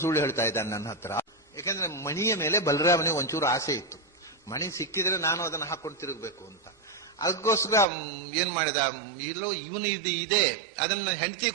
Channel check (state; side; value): drops out; left; at 7.9 s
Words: ಸುಳ್ಳು ಹೇಳ್ತಾ ಇದ್ದಾನೆ ನನ್ನ ಹತ್ರ. ಯಾಕಂದ್ರೆ ಮಣಿಯ ಮೇಲೆ ಬಲರಾಮನಿಗೆ ಒಂಚೂರು ಆಸೆ ಇತ್ತು, ಮಣಿ ಸಿಕ್ಕಿದ್ರೆ ನಾನು ಅದನ್ನು ಹಾಕೊಂಡು ತಿರುಗಬೇಕು ಅಂತ. ಅದಕ್ಕೋಸ್ಕರ ಏನ್ ಮಾಡಿದ, ಇಲ್ಲೋ ಇವನು ಇದೆ, ಅದನ್ನ ಹೆಂಡತಿ